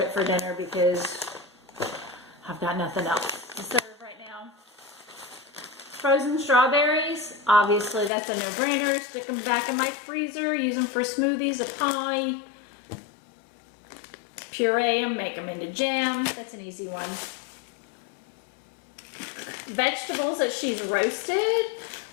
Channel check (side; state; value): right; drops out; at 8.1 s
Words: for dinner because I've got nothing else to serve right now. Frozen strawberries, obviously that's a no-brainer. Stick them back in my freezer, use them for smoothies, a pie. Puree them, make them into jam. That's an easy one. Vegetables that she's roasted.